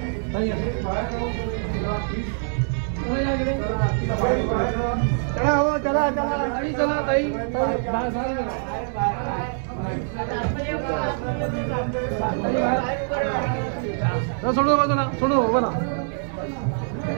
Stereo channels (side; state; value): left; silent; 61 dB below the other